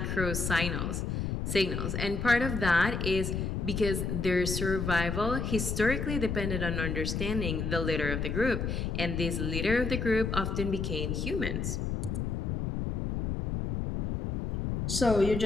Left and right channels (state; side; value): noise; left; rumble, 2 dB below the sound